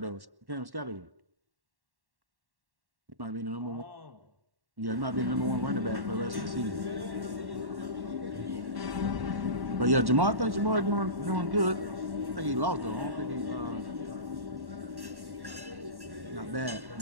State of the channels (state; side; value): late; left; 1.1 ms